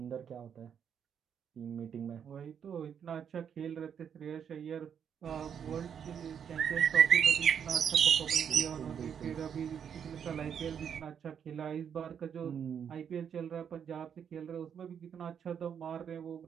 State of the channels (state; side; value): quieter; left; 7.9 dB